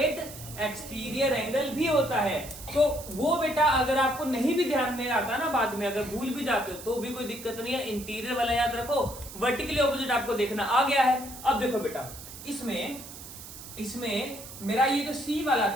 एक्सटीरियर एंगल भी होता है। तो वो बेटा अगर आपको नहीं भी ध्यान में आता ना, बाद में अगर भूल भी जाते हो तो भी कोई दिक्कत नहीं है, इंटीरियर वाला याद रखो, वर्टिकली ऑपोजिट आपको देखना आ गया है। अब देखो बेटा, इसमें मेरा ये जो सी वाला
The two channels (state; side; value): noise; right; hiss, 14 dB below the sound